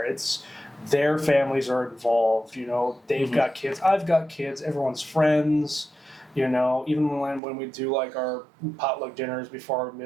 it's their families are involved, you know, they've got kids, I've got kids, everyone's friends, you know, even when we do, like, our potluck dinners before our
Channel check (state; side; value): drops out; left; at 7.4 s